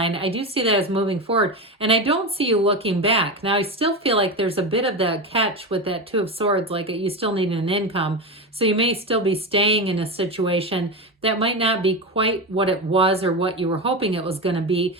I do see that as moving forward. And I don't see you looking back. Now, I still feel like there's a bit of that catch with that Two of Swords, like you still need an income. So you may still be staying in a situation that might not be quite what it was or what you were hoping it was going to be.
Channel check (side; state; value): both; normal; correlation 0.19